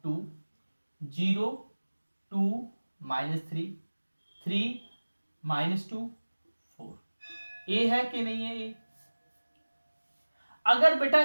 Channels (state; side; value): inverted; both; correlation -1.00